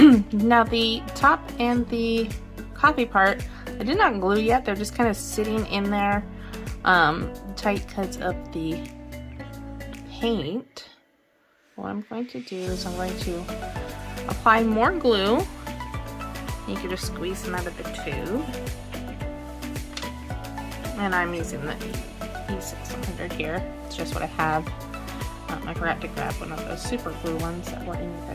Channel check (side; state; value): both; identical; correlation 1.00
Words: Now the top and the coffee part, I did not glue yet. They're just kind of sitting in there tight because of the paint. What I'm going to do is I'm going to apply more glue. You can just squeeze them out of the tube. And I'm using the E600 here. It's just what I have. I forgot to grab one of those super glue ones that were in your